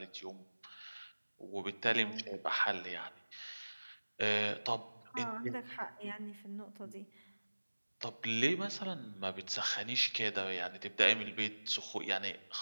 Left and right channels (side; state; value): both; inverted; correlation -1.00